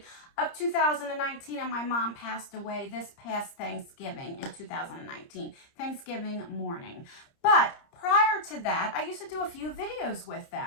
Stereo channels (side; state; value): right; late; 30 ms